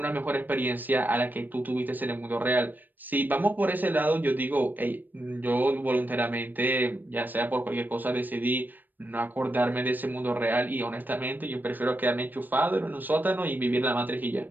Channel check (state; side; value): late; left; 0.089 ms